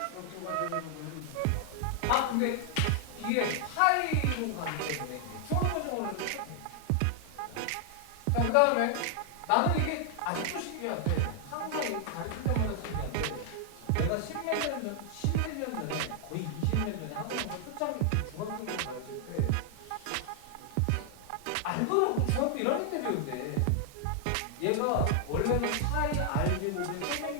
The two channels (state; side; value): different; both; correlation 0.00